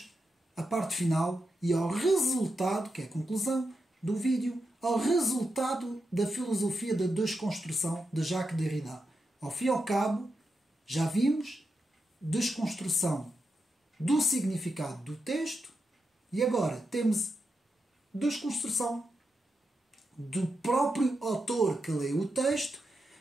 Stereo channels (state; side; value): normal; both; correlation 0.87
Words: à parte final e ao resultado, que é a conclusão do vídeo, ao resultado da filosofia da desconstrução de Jacques Derrida. Ao fim e ao cabo, já vimos desconstrução do significado do texto e agora temos desconstrução do próprio autor que lê o texto